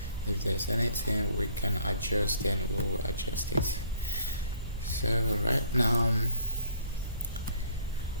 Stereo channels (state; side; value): inverted; both; correlation -0.58